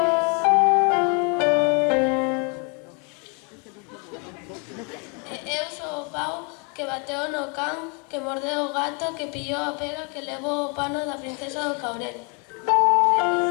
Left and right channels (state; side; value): quieter; right; 34.9 dB